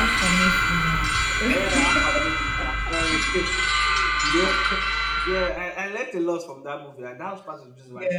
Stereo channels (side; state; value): both; identical; correlation 1.00